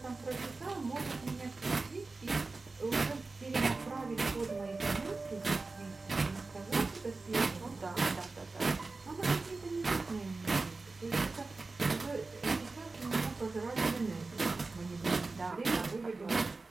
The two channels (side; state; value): left; quieter; 3.7 dB